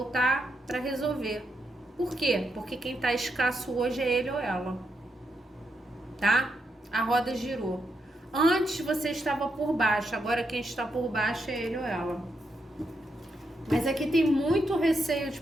para resolver. Por quê? Porque quem tá escasso hoje é ele ou ela, tá? A roda girou. Antes você estava por baixo, agora quem está por baixo é ele ou ela. Mas aqui tem muito receio de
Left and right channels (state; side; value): normal; both; correlation 0.82